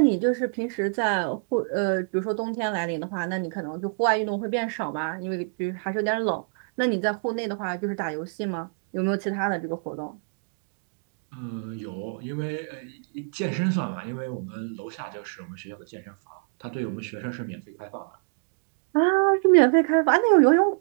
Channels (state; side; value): silent; left; digital silence